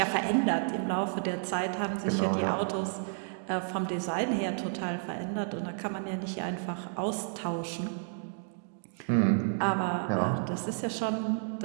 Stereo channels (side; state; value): left; silent; digital silence